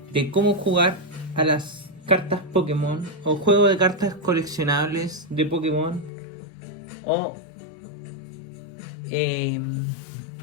de cómo jugar a las cartas Pokémon o juego de cartas coleccionables de Pokémon o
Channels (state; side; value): drops out; right; at 6.1 s